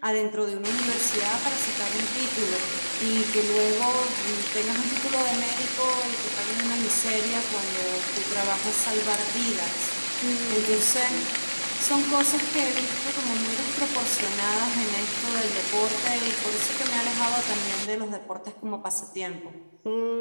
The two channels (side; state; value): both; inverted; correlation -1.00